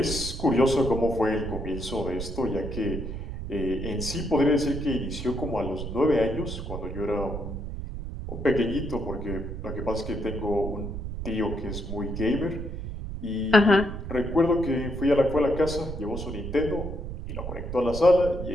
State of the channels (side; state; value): right; noise; rumble, 6 dB below the sound